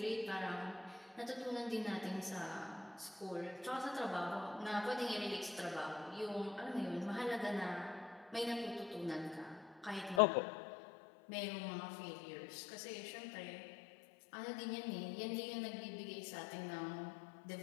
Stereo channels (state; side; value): drops out; right; at 10.2 s